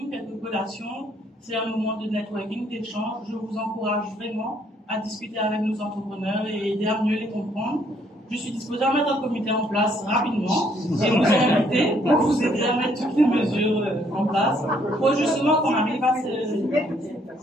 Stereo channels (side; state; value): both; normal; correlation 0.67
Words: quelques collations. C'est un moment de networking, d'échange. Je vous encourage vraiment à discuter avec nos entrepreneurs et aider à mieux les comprendre. Je suis disposée à mettre un comité en place rapidement et vous inviter pour vous aider à mettre toutes les mesures en place pour justement qu'on arrive à